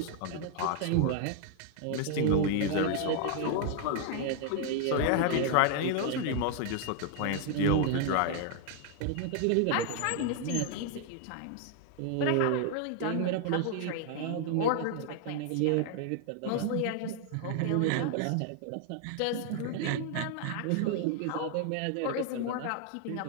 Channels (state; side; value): different; both; correlation 0.00